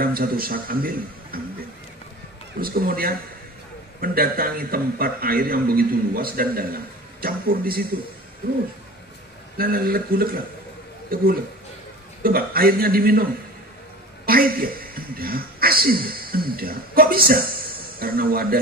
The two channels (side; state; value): both; normal; correlation 0.37